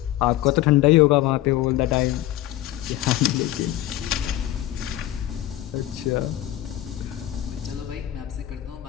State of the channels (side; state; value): right; quieter; 14.2 dB